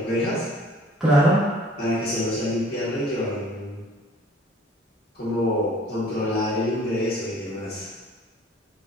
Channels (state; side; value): normal; both; correlation 0.53